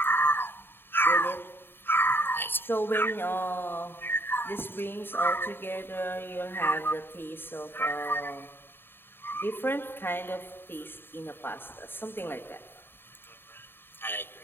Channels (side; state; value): right; late; 0.10 ms